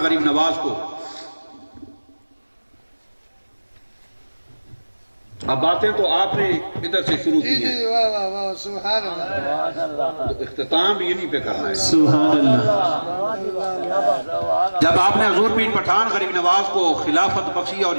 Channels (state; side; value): inverted; both; correlation -1.00